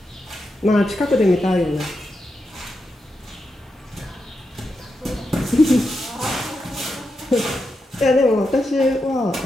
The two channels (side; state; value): both; normal; correlation 0.86